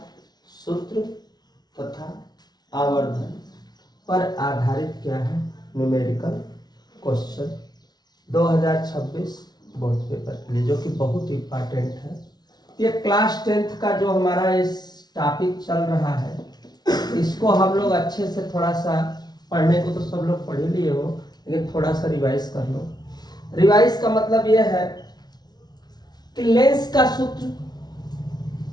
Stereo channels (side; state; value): right; late; 0.19 ms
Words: सूत्र तथा आवर्धन पर आधारित क्या है न्यूमेरिकल क्वेश्चन 2026 बोर्ड पेपर के लिए, जो कि बहुत इंपॉर्टेंट है। ये क्लास 10th का जो हमारा इस टॉपिक चल रहा है, इसको हम लोग अच्छे से थोड़ा सा पढ़ने को तो सब लोग पढ़ ही लिए हो, लेकिन थोड़ा सा रिवाइज कर लो। रिवाइज का मतलब यह है कि लेंस का सूत्र,